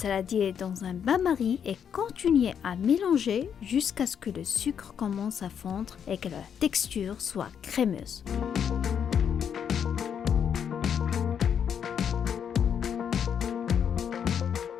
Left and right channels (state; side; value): quieter; right; 8.0 dB